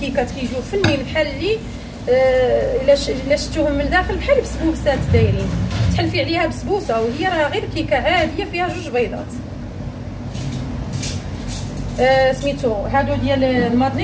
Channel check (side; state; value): both; identical; correlation 1.00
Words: كيجيو فنين بحال اللي الا شفتوهم من الداخل بحال بسبوسات دايرين، تحلفي عليها بسبوسه وهي راه غير كيكه عاديه فيها 2 بيضات. سميتو هادو ديال